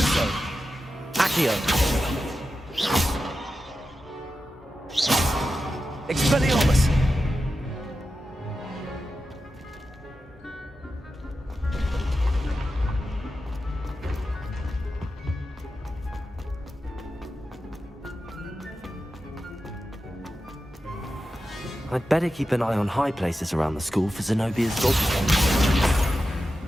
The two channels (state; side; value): normal; both; correlation 0.91